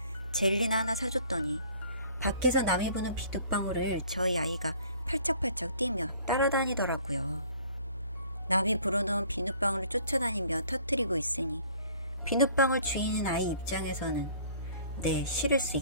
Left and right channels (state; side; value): inverted; both; correlation -0.54